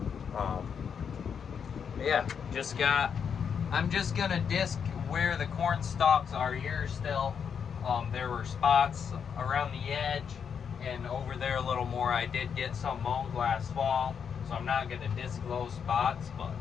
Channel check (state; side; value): quieter; right; 7.1 dB